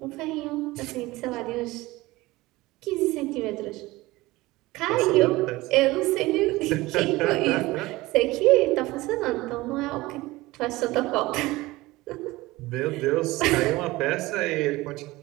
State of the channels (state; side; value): quieter; left; 19.8 dB